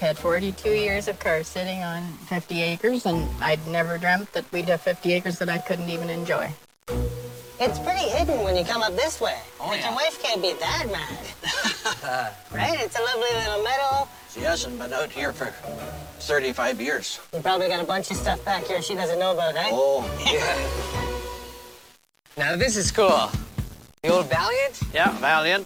42 years of cars sitting on 50 acres, and I'd never dreamt that we'd have 50 acres that I couldn't even enjoy. It's pretty hidden when you come up this way. Oh, but yeah. your wife can't be that mad. Right? It's a lovely little meadow. She hasn't been out here for 35 years. You probably got a bunch of stuff back here she doesn't know about, eh? Oh, Now this is cool. The old Valiant? yeah, Valiant.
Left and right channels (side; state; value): both; identical; correlation 1.00